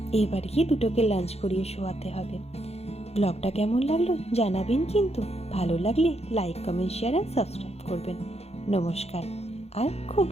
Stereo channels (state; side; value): late; right; 0.30 ms